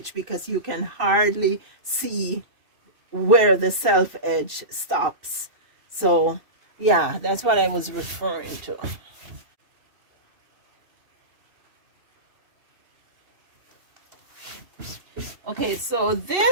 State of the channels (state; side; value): late; left; 2.6 ms